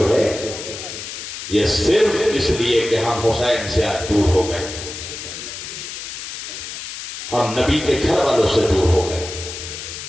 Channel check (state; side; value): noise; left; hiss, 9 dB below the sound